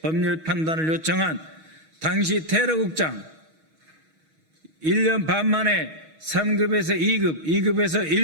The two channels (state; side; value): late; left; 6.3 ms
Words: 법률 판단을 요청한 당시 테러국장 1년 반 만에 3급에서 2급, 2급에서